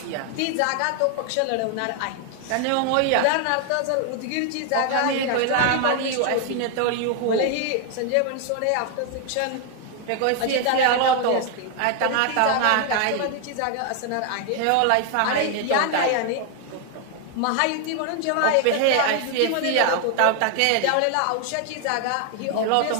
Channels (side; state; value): both; different; correlation 0.00